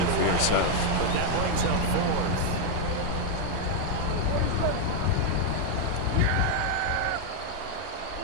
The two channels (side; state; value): both; different; correlation 0.00